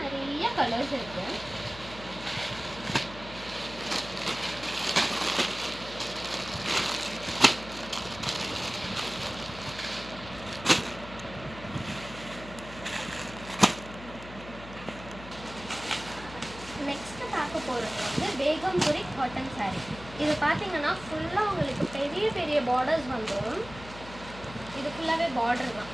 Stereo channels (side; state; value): left; noise; hum, 15 dB below the sound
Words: நிறைய கலர்ஸ் இருக்குது. நெக்ஸ்ட்டு பார்க்க போகிறது வந்து பேகம்புரி காட்டன் சாரீ. இது பார்த்தீங்கன்னா ஃபுல்லாக உங்களுக்கு பெரிய பெரிய பார்டர்ஸ் வந்துடும். இது ஃபுல்லாகவே பார்டர் தான்,